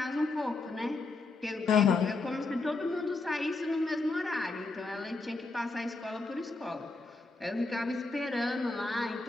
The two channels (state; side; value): quieter; right; 3.5 dB